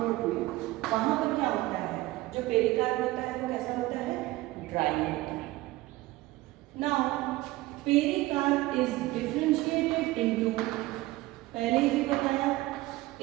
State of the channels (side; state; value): left; quieter; 18.6 dB